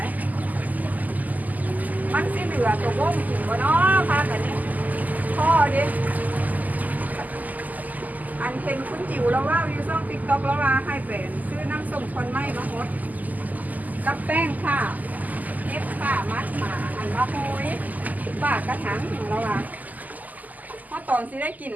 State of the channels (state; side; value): late; left; 0.081 ms